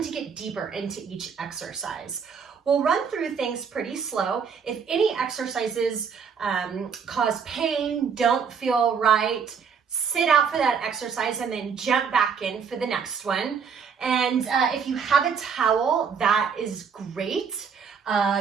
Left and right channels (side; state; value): left; quieter; 6.4 dB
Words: to get deeper into each exercise. We'll run through things pretty slow. If any exercises cause pain, don't feel right, sit out for that exercise and then jump back in for the next one. And if you have a towel, that is great.